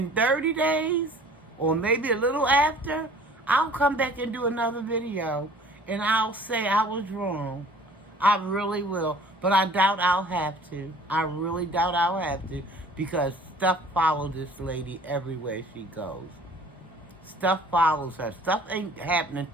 30 days, or maybe a little after, I'll come back and do another video. And I'll say I was wrong. I really will. But I doubt I'll have to. I really doubt I'll have to. Because stuff follows this lady everywhere she goes. Stuff follows her. Stuff ain't happening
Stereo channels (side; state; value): both; normal; correlation 0.50